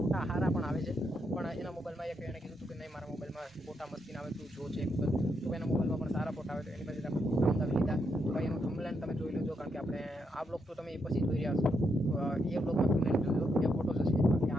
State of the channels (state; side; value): normal; both; correlation 0.80